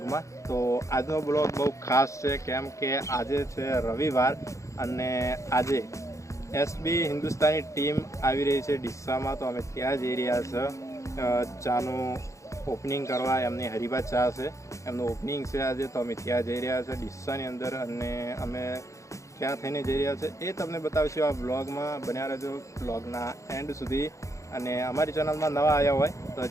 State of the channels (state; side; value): late; right; 0.15 ms